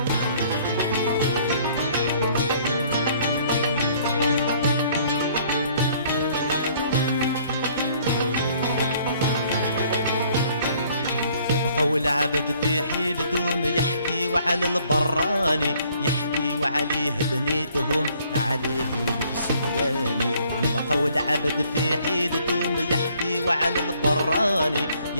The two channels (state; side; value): inverted; both; correlation -0.61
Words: والعبد في حيل دوم يحكي وعلى البراني، يحكي وعليه بنيتهم عليه البسواني. نبقى والعبد في حيل دوم يحكي وعلى البراني،